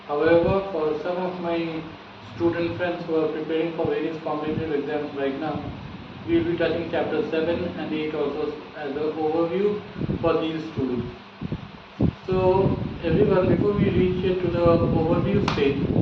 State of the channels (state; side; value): identical; both; correlation 1.00